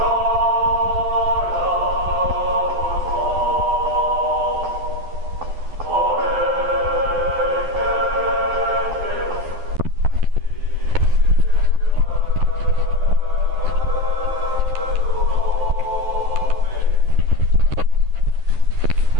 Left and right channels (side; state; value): left; late; 12 ms